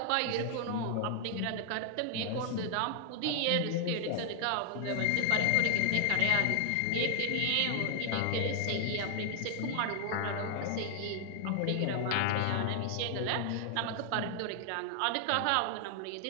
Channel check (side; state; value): both; different; correlation 0.00